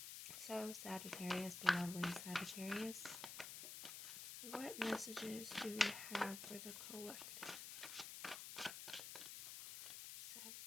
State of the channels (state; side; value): noise; left; hiss, 7 dB below the sound